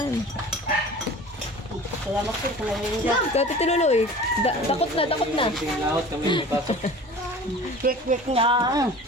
Salamat po sa ngayon dyan. Kati Tiluloy, takot na, takot na. Tingin lahat kami may pasok. Quick na.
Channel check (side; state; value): both; normal; correlation 0.40